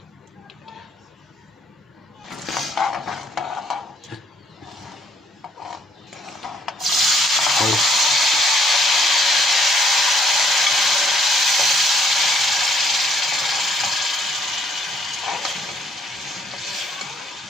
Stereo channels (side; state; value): both; normal; correlation 0.65